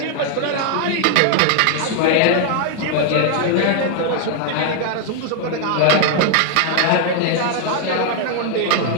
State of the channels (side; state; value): both; different; correlation 0.00